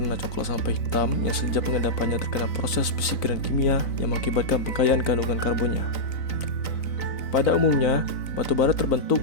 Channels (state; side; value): late; right; 3.9 ms